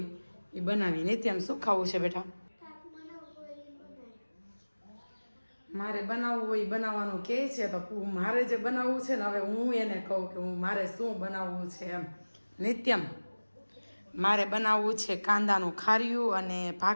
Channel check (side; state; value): both; inverted; correlation -1.00